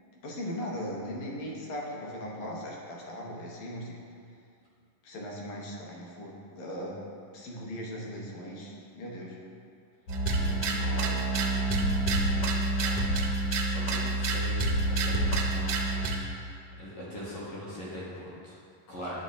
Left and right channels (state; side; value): late; right; 10 ms